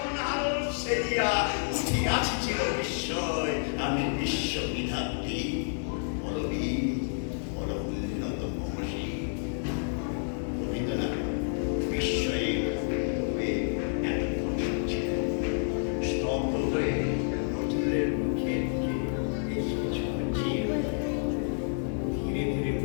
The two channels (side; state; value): right; silent; digital silence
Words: আলোক সেরিয়া, উঠিয়াছি চির বিস্ময় আমি বিশ্ববিধাত্রী। বলবীর, বড় উন্নত মহাশী। রবীন্দ্রনাথ বিস্ময়ে হয়ে এতক্ষণ শুনছিলেন। স্তব্ধ হয়ে নজরুলের মুখের দিকে বেশ কিছুক্ষণ চেয়ে রইলেন। ধীরে ধীরে